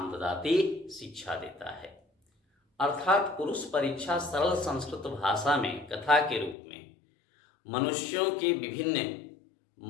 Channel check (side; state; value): right; drops out; at 6.6 s